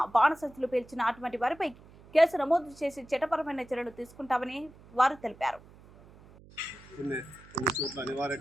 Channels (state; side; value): noise; right; hum, 23 dB below the sound